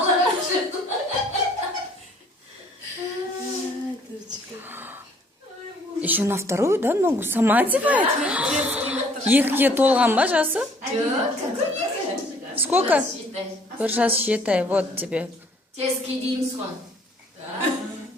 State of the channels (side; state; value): both; normal; correlation 0.59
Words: раньше. Еще на вторую, да, ногу сама одевает? Екіге толған ба жасы? Сколько? Бір жас считай, вот тебе. Тески дейміз ғой.